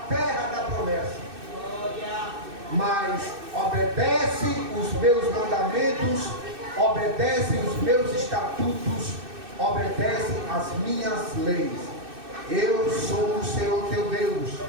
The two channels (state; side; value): late; left; 2.6 ms